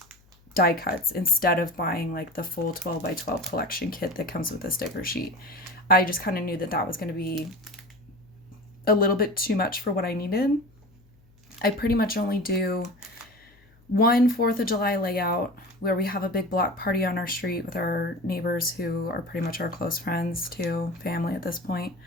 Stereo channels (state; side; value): noise; left; hum, 30 dB below the sound